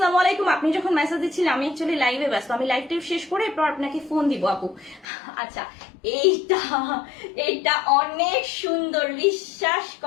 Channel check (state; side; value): drops out; right; at 5.1 s